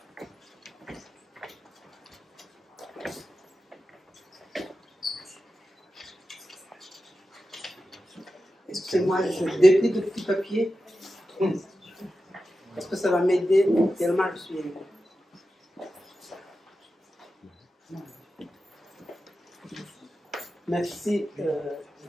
Excusez-moi, je déplie de petits papiers. Parce que ça va m'aider tellement je suis ému. Merci,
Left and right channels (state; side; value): normal; both; correlation 0.92